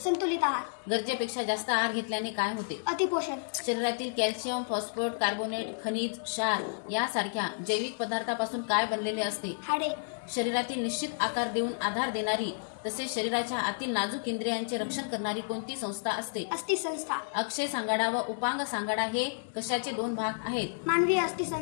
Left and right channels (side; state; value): right; silent; digital silence